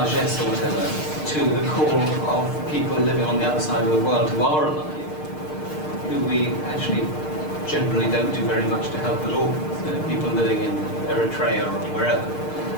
or whatever to the call of people living on the other side of the world who are alive, who we actually generally don't do very much to help at all, people living in Eritrea or wherever.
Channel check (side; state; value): right; late; 6.6 ms